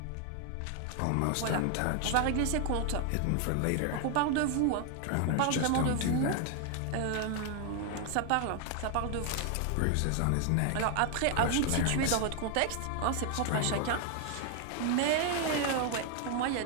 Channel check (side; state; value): both; different; correlation 0.00